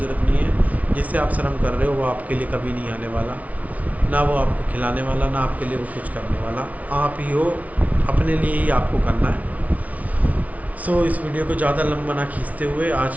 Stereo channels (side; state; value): left; late; 0.069 ms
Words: नहीं है। जिससे आप शर्म कर रहे हो वो आपके लिए कभी नहीं आने वाला, ना वो आपको खिलाने वाला, ना आपके लिए वो कुछ करने वाला। आप ही हो, अपने लिए ही आपको करना है। सो इस वीडियो को ज़्यादा लंबा ना खींचते हुए